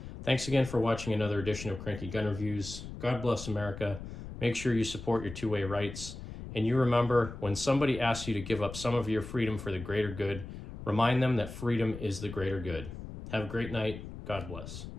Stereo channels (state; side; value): noise; left; rumble, 11 dB below the sound